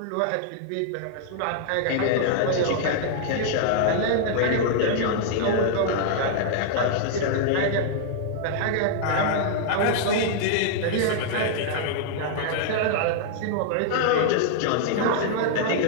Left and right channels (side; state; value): both; different; correlation -0.01